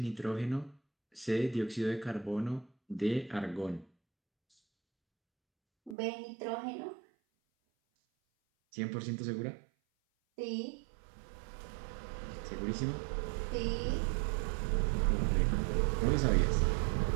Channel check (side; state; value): left; drops out; at 6.0 s